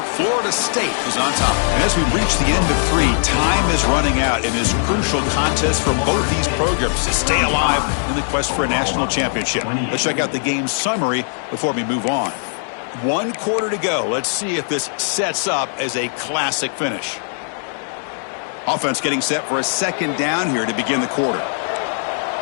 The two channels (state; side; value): silent; right; digital silence